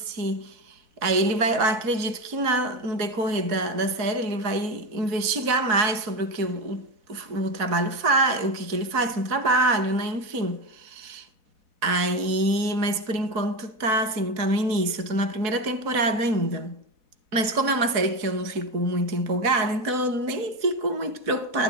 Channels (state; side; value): late; left; 4.1 ms